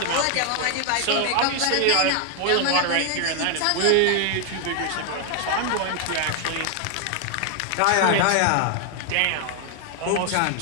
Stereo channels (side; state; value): both; different; correlation 0.00